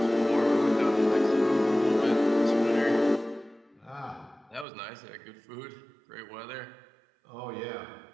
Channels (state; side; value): drops out; left; at 4.7 s